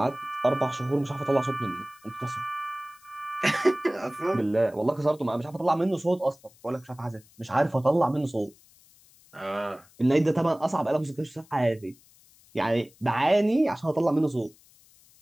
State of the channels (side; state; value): left; noise; hiss, 28 dB below the sound